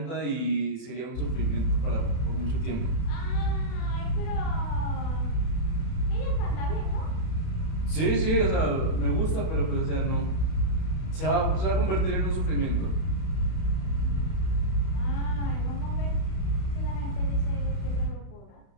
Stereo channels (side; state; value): right; late; 31 ms